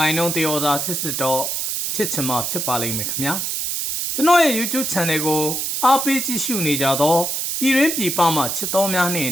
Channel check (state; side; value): noise; right; hiss, 2 dB below the sound